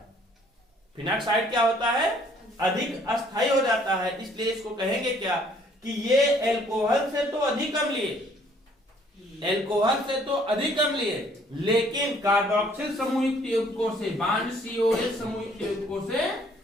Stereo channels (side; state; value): both; normal; correlation 0.61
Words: फिनॉक्साइड क्या होता है? अधिक अस्थायी हो जाता है, इसलिए इसको कहेंगे क्या कि ये एल्कोहल से तो अधिक अम्लीय, एल्कोहल से तो अधिक अम्लीय, लेकिन कार्बोक्सिल समूहयुक्त यौगिकों से, बांड COH समूहयुक्त यौगिकों से